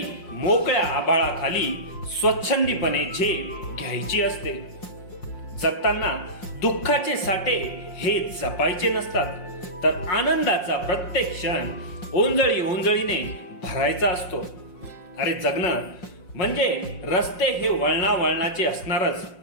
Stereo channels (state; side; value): late; right; 5.6 ms